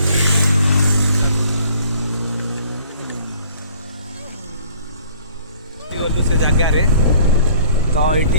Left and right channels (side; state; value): both; inverted; correlation -0.55